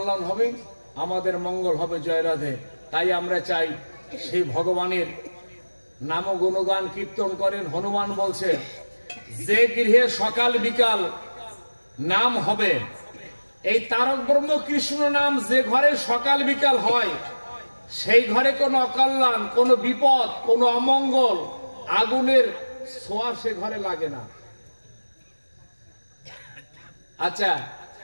হবে, আমাদের মঙ্গল হবে। জয় রাধে। তাই আমরা চাই সেই ভগবানের নাম গুণগান কীর্তন করেন। হনুমান বলছেন যে গৃহে সকাল বিকাল নাম হবে, এই তারক ব্রহ্ম কৃষ্ণ নাম যে ঘরে সকাল বিকাল হয়, সেই ঘরে কোনো অকল্যাণ, কোনো বিপদ, কোনো অমঙ্গল, আগুনের ছোঁয়া সে ঘরে লাগে না। আচ্ছা,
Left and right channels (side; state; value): both; inverted; correlation -1.00